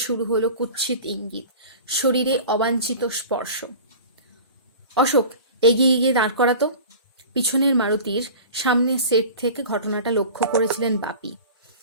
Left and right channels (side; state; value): both; inverted; correlation -0.37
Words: শুরু হলো কুৎসিত ইঙ্গিত, শরীরে অবাঞ্ছিত স্পর্শ। অশোক, এগিয়ে গিয়ে দাঁড় করাতো। পিছনের মারুতির সামনের সেট থেকে ঘটনাটা লক্ষ্য করেছিলেন বাপি।